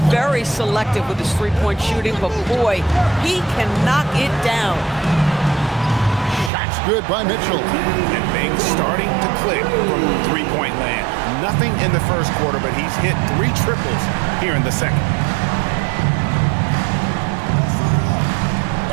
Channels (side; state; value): left; drops out; at 6.5 s